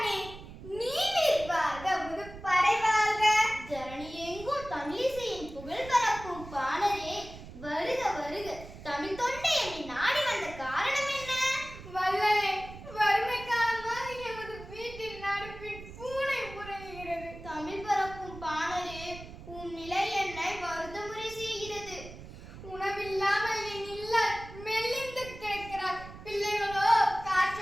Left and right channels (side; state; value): right; noise; rumble, 14 dB below the sound